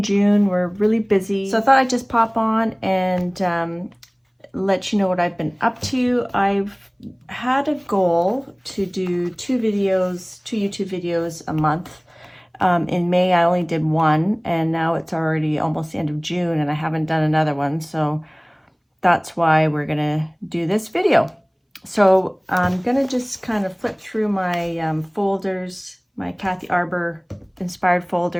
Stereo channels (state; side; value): identical; both; correlation 1.00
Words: June were really busy, so I thought I'd just pop on and let you know what I've been up to. I've had a goal to do two YouTube videos a month. In May, I only did one, and now it's already almost the end of June, and I haven't done another one, so that's why we're gonna do this video. So I'm gonna just kind of flip through my folders, my Kathy Arbor inspired